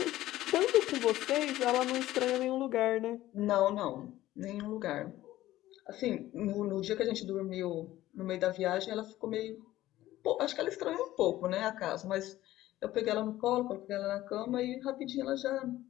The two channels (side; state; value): right; quieter; 15.2 dB